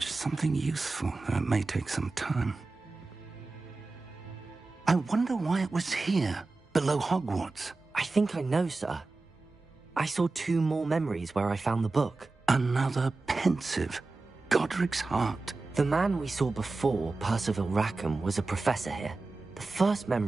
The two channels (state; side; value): quieter; left; 3.5 dB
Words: something useful, though it may take some time. I wonder why it was here, below Hogwarts. I think I know, sir. I saw 2 more memories where I found the book. Another pensive. Godric's heart. The man we saw before, Percival Rackham, was a professor here. The first